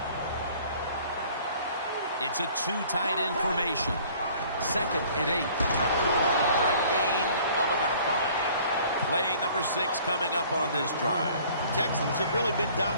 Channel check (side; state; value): both; inverted; correlation -0.53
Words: It's a 2 tight end formation. 2nd and 8. For a gain of about 5. Play number 6 coming up on this drive. Texans have really been